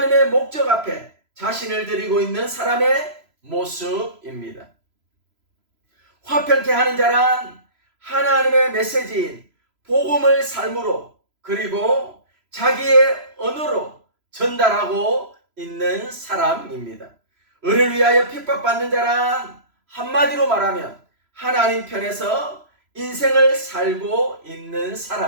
목적 앞에 자신을 드리고 있는 사람의 모습입니다. 화평케 하는 자란 하나님의 메시지인 복음을 삶으로 그리고 자기의 언어로 전달하고 있는 사람입니다. 을을 위하여 핍박받는 자란 한마디로 말하면 하나님 편에서 인생을 살고 있는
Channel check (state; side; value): late; left; 3.0 ms